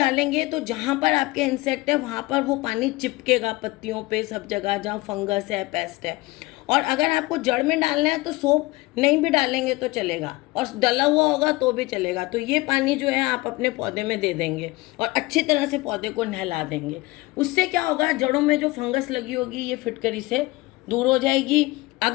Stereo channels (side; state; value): right; quieter; 21.2 dB